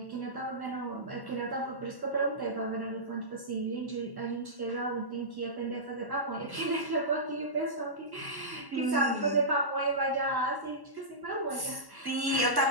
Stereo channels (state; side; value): late; left; 1.1 ms